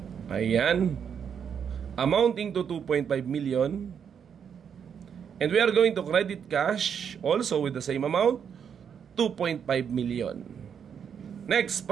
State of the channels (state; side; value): quieter; left; 7.6 dB